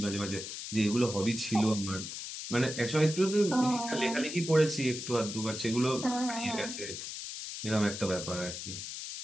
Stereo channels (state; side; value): noise; left; hiss, 8 dB below the sound